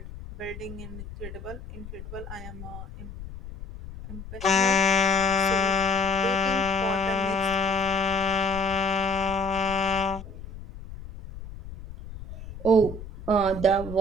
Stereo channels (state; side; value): noise; left; rumble, 12 dB below the sound